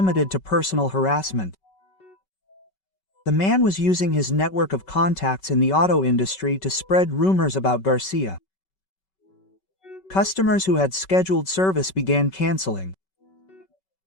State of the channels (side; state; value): right; late; 5.3 ms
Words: to personal harassment. The man was using his network of contacts in the auto industry to spread rumors about Garcia. Customers who had scheduled service began canceling.